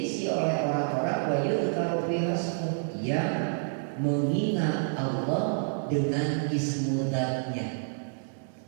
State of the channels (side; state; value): left; silent; 59 dB below the other